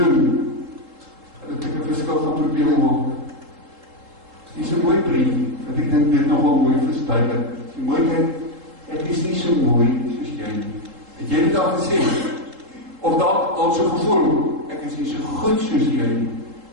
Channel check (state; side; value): late; left; 3.7 ms